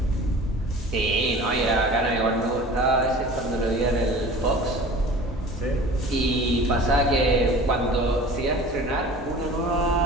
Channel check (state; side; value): normal; both; correlation 0.42